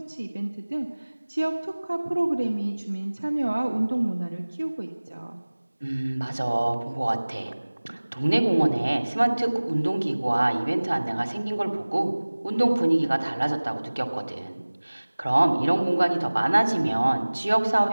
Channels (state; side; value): inverted; both; correlation -1.00